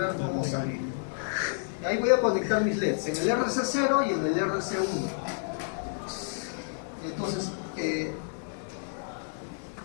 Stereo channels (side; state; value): right; silent; digital silence